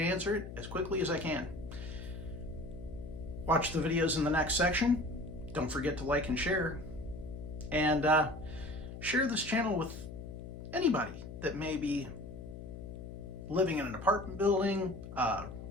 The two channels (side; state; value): left; noise; hum, 11 dB below the sound